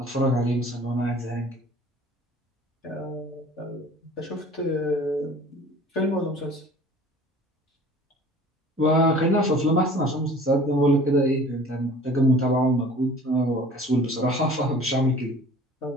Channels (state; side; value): normal; both; correlation 0.47